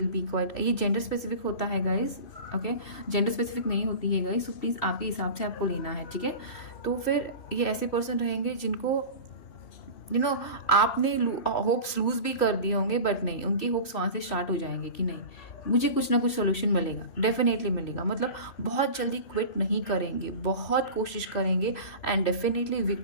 बी क्वाइट, ये जेंडर स्पेसिफिक होता है गाइज, ओके, जेंडर स्पेसिफिक नहीं होती है गाइज, सो प्लीज़ आपके हिसाब से आपको लेना है, ठीक है। तो फिर ये ऐसे पर्सन रहेंगे जिनको आपने होप्स लूज भी कर दिए होंगे, बट नहीं, उनके होप्स वहाँ से स्टार्ट हो जाएंगे कि नहीं, मुझे कुछ ना कुछ सोल्यूशन मिलेगा, डेफिनेटली मिलेगा। मतलब बहुत जल्दी क्विट नहीं करेंगे, बहुत कोशिश करेंगे एंड डेफिनेटली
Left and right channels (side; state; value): right; late; 3.0 ms